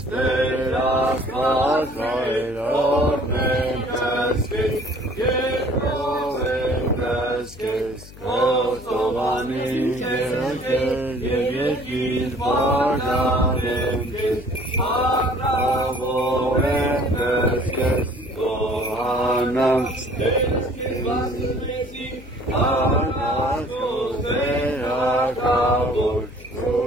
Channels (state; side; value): noise; left; hum, 18 dB below the sound